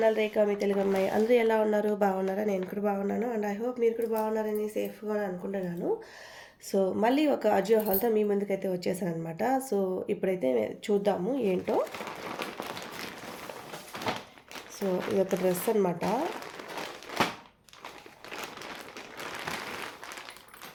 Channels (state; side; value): identical; both; correlation 1.00